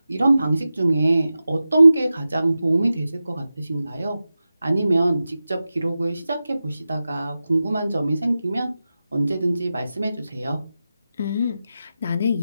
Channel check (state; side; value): inverted; both; correlation -0.93